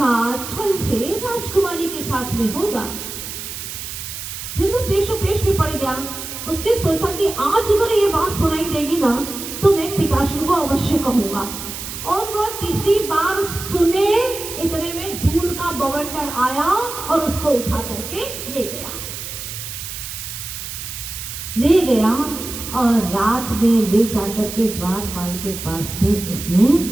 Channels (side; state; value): right; noise; hiss, 8 dB below the sound